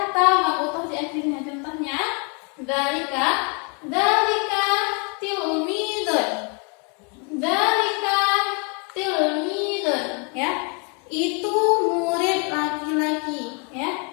ta marbutah di akhirnya. Contohnya dzalika tilmidun. Dzalika tilmidun, ya. Itu murid laki-laki, ya.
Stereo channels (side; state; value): right; quieter; 35.1 dB